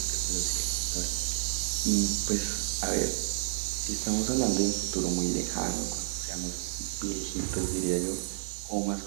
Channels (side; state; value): left; silent; digital silence